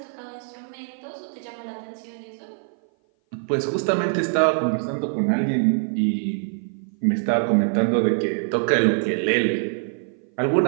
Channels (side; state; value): left; silent; 57 dB below the other